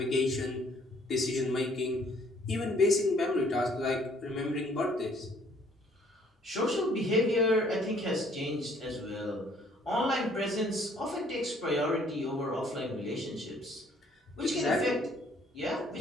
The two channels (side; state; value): both; normal; correlation 0.61